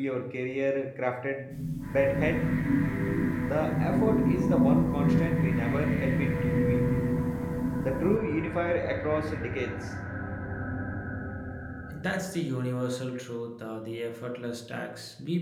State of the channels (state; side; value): identical; both; correlation 1.00